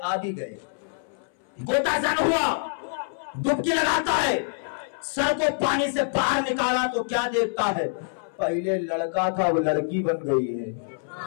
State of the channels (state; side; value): silent; right; 61 dB below the other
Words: भी गए, गोताजन हुआ। डुबकी लगाता है, सर को पानी से बाहर निकाला तो क्या देखता है, पहले लड़का था वो लड़की बन गई है।